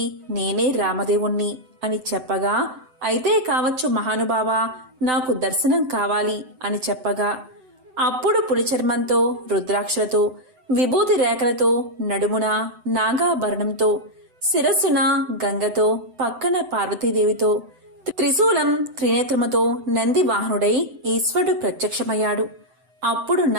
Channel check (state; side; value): late; left; 7.8 ms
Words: నేనే రామదేవుణ్ణి అని చెప్పగా, అయితే కావచ్చు మహానుభావా, నాకు దర్శనం కావాలి అని చెప్పగా, అప్పుడు పులిచర్మంతో, రుద్రాక్షలతో, విభూతి రేఖలతో, నడుమున నాగాభరణంతో, శిరస్సున గంగతో, పక్కన పార్వతీదేవితో, త్రిశూలం త్రినేత్రముతో నంది వాహనుడై ఈశ్వరుడు ప్రత్యక్షమయ్యాడు. అప్పుడు